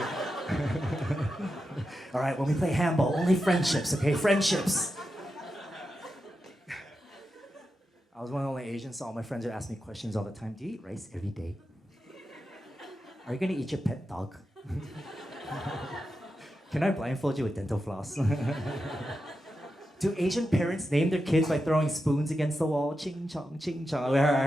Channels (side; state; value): both; normal; correlation 0.89